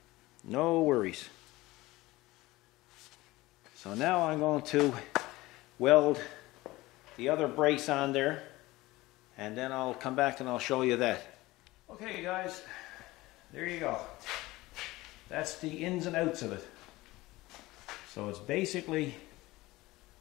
no worries. So now I'm going to weld the other brace on there, and then I'll come back and I'll show you that. Okay guys, there you go. That's the ins and outs of it. So it's basically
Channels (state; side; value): quieter; right; 19.3 dB